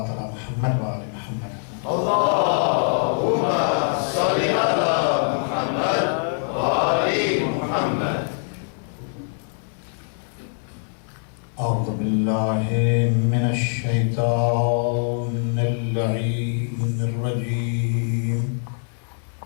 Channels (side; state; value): right; silent; digital silence